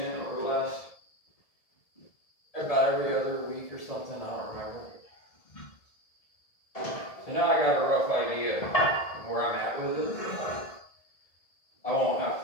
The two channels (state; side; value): late; right; 1.7 ms